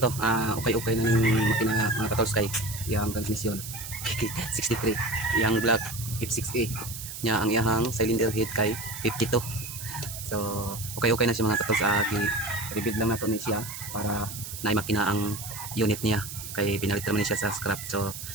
okay na ng makina mga katools kay yung transmission 63, yung black F6A nya ang iyang cylinder head kay 52. So okay na siya mga katools. I-rebuild lang nato ni siya para na makina ang unit niya kay pinalit naman siya sa scrap. So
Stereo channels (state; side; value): noise; right; hiss, 9 dB below the sound